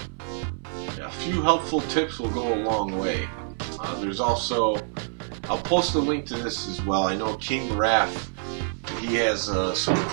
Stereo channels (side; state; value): left; silent; 61 dB below the other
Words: Yeah, a few helpful tips will go a long way. There's also, I'll post a link to this as well. I know King Raff, he has some